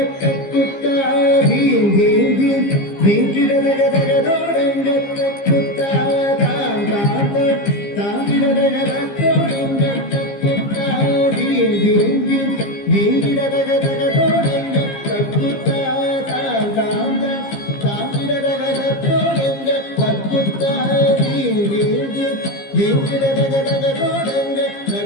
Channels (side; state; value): right; late; 15 ms